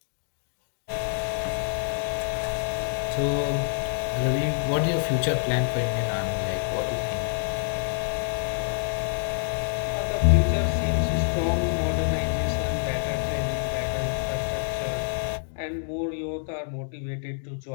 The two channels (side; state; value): right; silent; digital silence